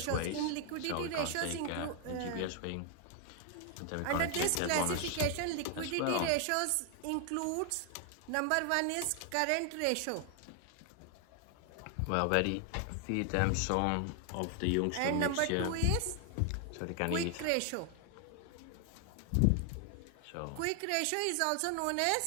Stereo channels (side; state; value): both; different; correlation 0.00